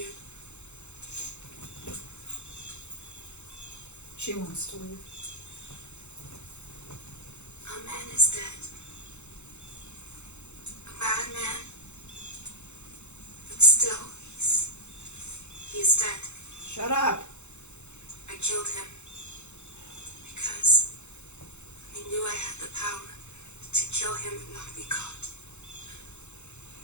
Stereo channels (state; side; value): late; right; 0.82 ms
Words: She wants to leave. is dead. A bad man. But still, he's dead. Shut up. I killed him because I knew I had the power to kill him and not be caught.